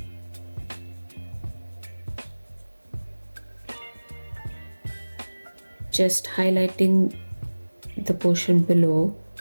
Just highlighting the portion below,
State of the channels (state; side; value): inverted; both; correlation -1.00